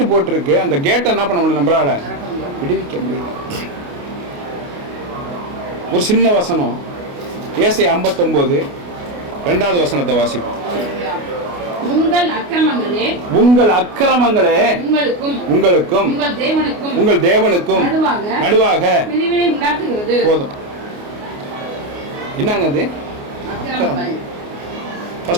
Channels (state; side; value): late; left; 28 ms